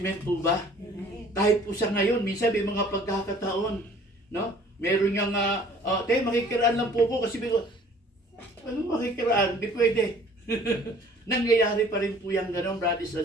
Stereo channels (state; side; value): normal; both; correlation 0.53